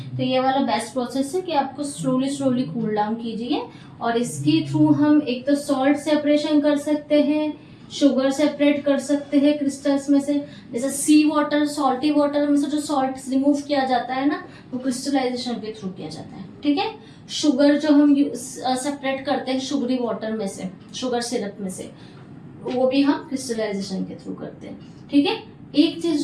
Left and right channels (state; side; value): identical; both; correlation 1.00